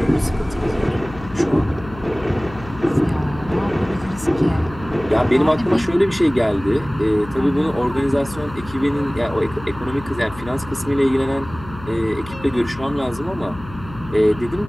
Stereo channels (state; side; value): noise; left; hum, 16 dB below the sound